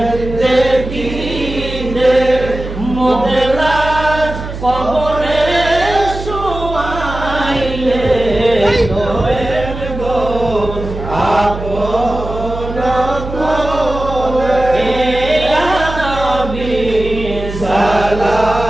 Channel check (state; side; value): noise; right; hum, 8 dB below the sound